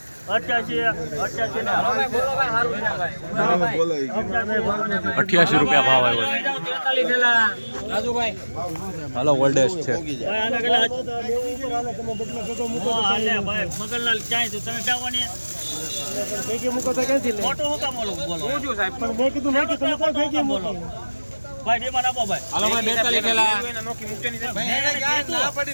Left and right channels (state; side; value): inverted; both; correlation -1.00